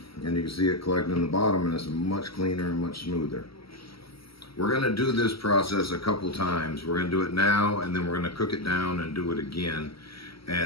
And you can see it collecting in the bottom, and it's much cleaner and much smoother. We're going to do this process a couple times. We're going to do it now, and then we're going to cook it down and do it again.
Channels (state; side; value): late; right; 0.75 ms